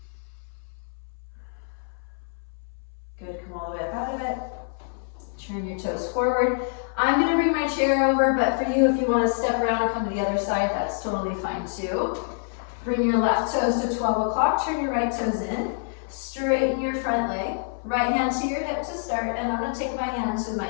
Good, come all the way up out of it. Turn your toes forward. I'm going to bring my chair over, but for you, if you want to step around and come to the other side, that's totally fine too. Bring your left toes to 12 o'clock, turn your right toes in, straighten your front leg, right hand to your hip to start, and I'm going to take my hand to my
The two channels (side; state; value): right; silent; 61 dB below the other